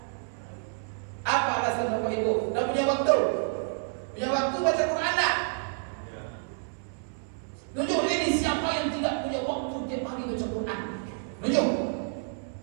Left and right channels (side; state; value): left; silent; 59 dB below the other